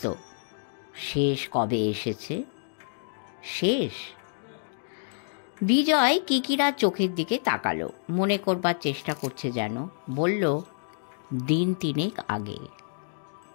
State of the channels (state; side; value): silent; right; digital silence